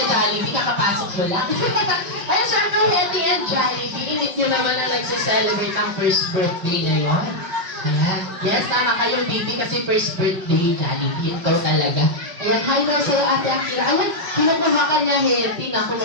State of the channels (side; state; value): left; late; 5.4 ms